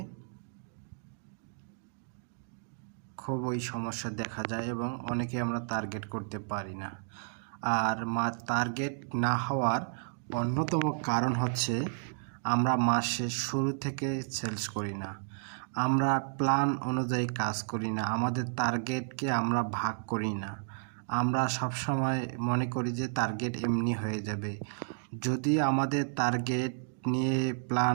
খুবই সমস্যা দেখা যায় এবং অনেকে আমরা টার্গেট করতে পারি না। আর টার্গেট না হওয়ার অন্যতম কারণ হচ্ছে আমরা মাসের শুরু থেকে সেলস করি না, আমরা প্ল্যান অনুযায়ী কাজ করি না, আমাদের টার্গেটকে আমরা ভাগ করি না। আমরা সবসময় মনে করি যে টার্গেট এমনি হয়ে যাবে। যদি আমাদের টার্গেট নিয়ে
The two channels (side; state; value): left; silent; digital silence